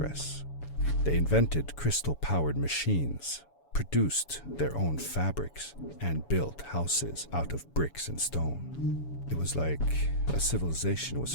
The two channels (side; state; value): right; late; 7.1 ms